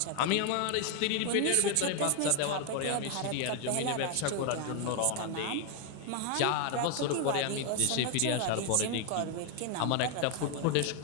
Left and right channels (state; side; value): different; both; correlation 0.01